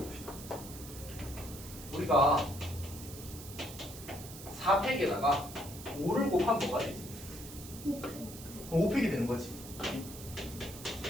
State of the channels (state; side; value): noise; right; hiss, 13 dB below the sound